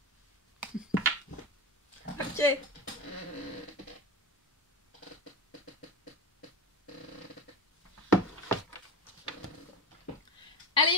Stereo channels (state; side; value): normal; both; correlation 0.24